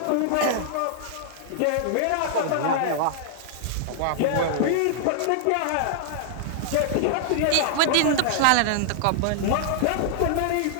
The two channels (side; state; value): both; different; correlation -0.01